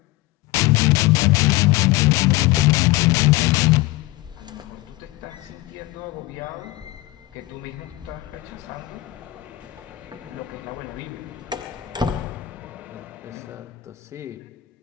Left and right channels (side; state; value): right; quieter; 18.2 dB